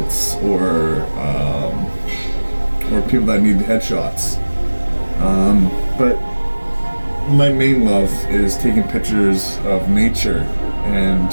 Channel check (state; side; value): inverted; both; correlation -1.00